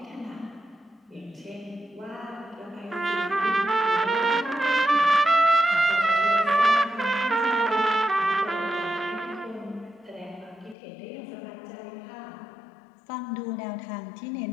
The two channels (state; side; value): drops out; right; at 10.8 s